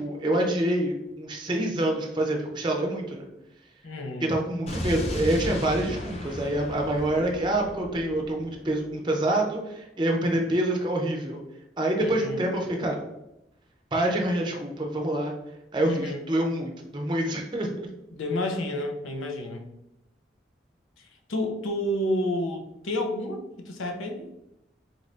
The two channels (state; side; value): normal; both; correlation 0.58